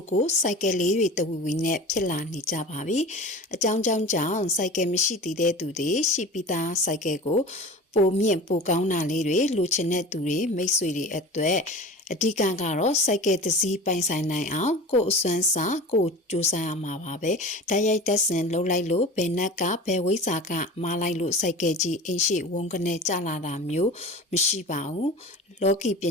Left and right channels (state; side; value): normal; both; correlation 0.35